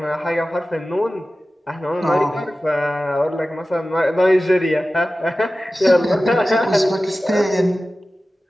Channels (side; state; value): both; normal; correlation 0.95